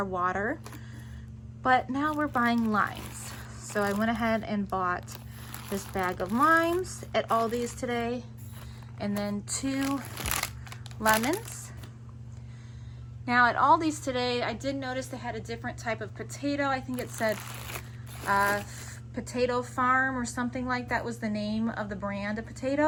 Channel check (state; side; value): identical; both; correlation 1.00